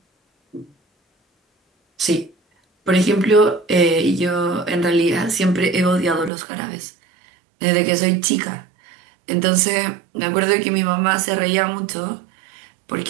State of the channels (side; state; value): left; drops out; at 6.3 s